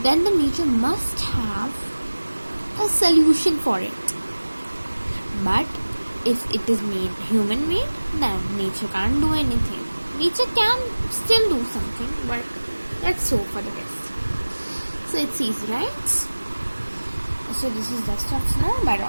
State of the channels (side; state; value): both; inverted; correlation -1.00